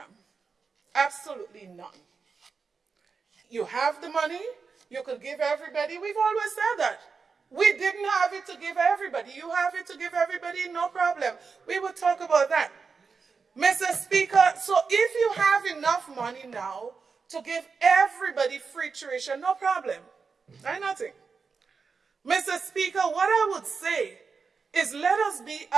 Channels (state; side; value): quieter; left; 5.1 dB